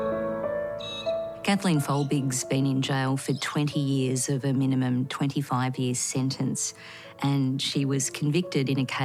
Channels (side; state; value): both; identical; correlation 1.00